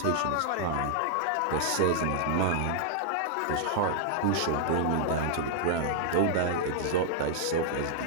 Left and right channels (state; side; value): different; both; correlation -0.01